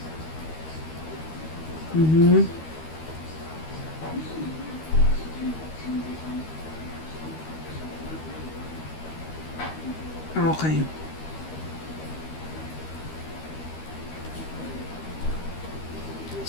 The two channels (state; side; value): late; right; 13 ms